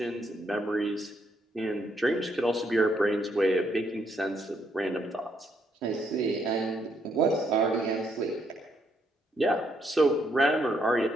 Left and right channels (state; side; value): normal; both; correlation 0.74